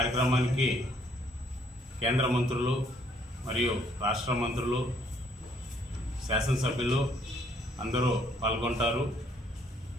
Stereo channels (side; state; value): both; normal; correlation 0.66